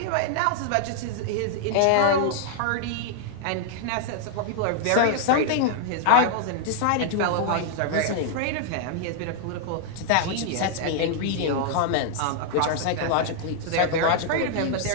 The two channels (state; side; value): different; both; correlation 0.00